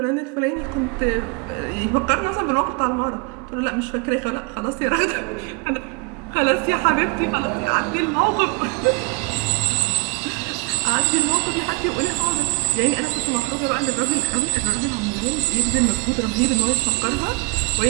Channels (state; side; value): quieter; left; 26.6 dB